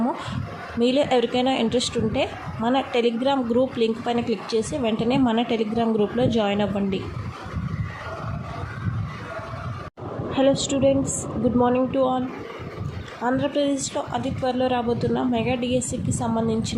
మీలో ఎవరికైనా ఇంట్రెస్ట్ ఉంటే మన టెలిగ్రామ్ గ్రూప్ లింక్ పైన క్లిక్ చేసి వెంటనే మన టెలిగ్రామ్ గ్రూప్లో జాయిన్ అవ్వండి. Hello students, good morning to all. ఆంధ్రప్రదేశ్లో అతి త్వరలో రాబోతున్న మెగా డిఎస్సికి సంబంధించిన లేటెస్ట్ అప్డేట్స్ కోసం వెంటనే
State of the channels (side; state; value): both; identical; correlation 1.00